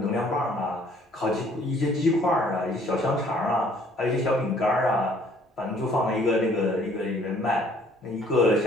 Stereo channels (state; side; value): normal; both; correlation 0.59